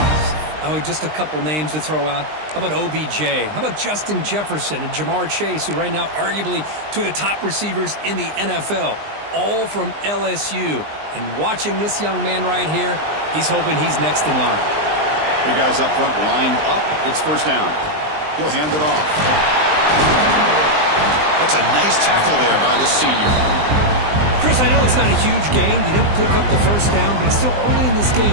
Oh, just a couple names to throw out. How about OBJ? How about Justin Jefferson and Jamar Chase, who right now arguably two of the top receivers in the NFL, all from LSU. And watching this young man right here, he's hoping he's next in line. Big guys up front lined up. It's 1st down. He'll hand it off. That's a nice tackle there by the senior. Chris, I know it's not a huge gain. You didn't pick up the 1st down, but it's still early in this game.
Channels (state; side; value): late; left; 20 ms